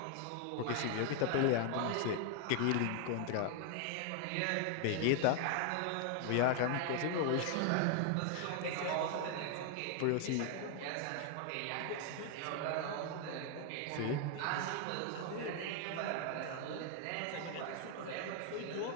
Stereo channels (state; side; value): different; both; correlation 0.00